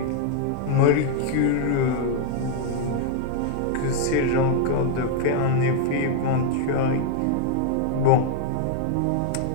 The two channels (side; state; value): both; different; correlation 0.00